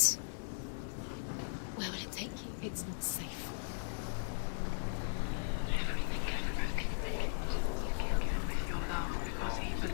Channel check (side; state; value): right; silent; digital silence